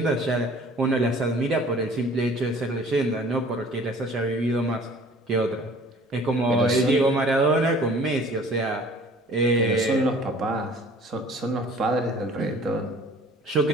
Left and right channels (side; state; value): both; normal; correlation 0.50